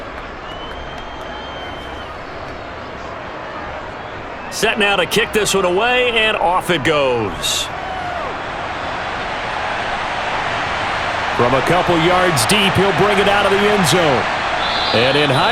Set now to kick this one away, and off it goes. From a couple yards deep, he'll bring it out of the end zone. And in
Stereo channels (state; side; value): identical; both; correlation 1.00